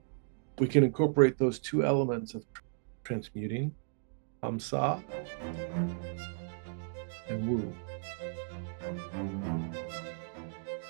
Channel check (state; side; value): silent; left; digital silence